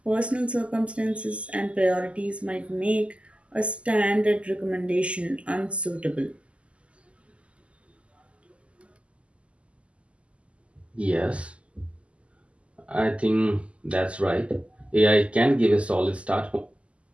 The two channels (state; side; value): late; left; 0.057 ms